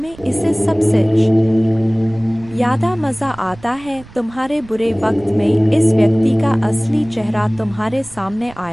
इसे सबसे ज्यादा मजा आता है। तुम्हारे बुरे वक्त में इस व्यक्ति का असली चेहरा तुम्हारे सामने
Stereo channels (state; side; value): noise; right; rumble, 21 dB below the sound